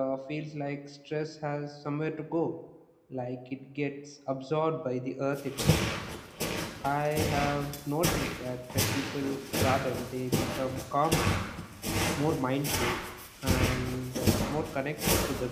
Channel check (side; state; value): both; identical; correlation 1.00